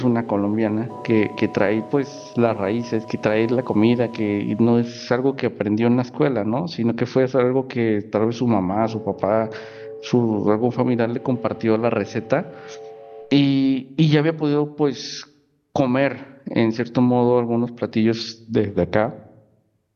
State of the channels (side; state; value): both; identical; correlation 1.00